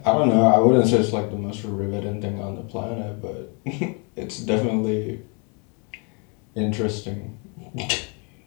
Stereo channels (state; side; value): quieter; right; 35.2 dB